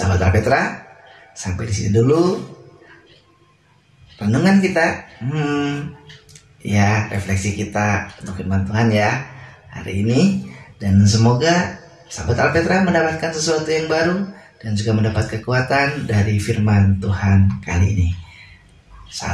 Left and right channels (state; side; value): identical; both; correlation 1.00